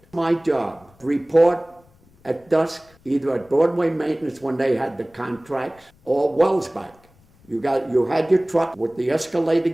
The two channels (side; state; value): left; noise; rumble, 30 dB below the sound